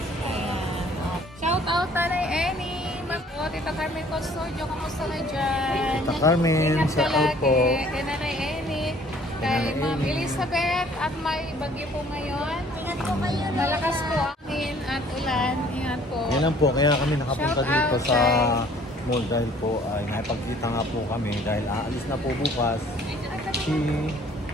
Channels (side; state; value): both; normal; correlation 0.56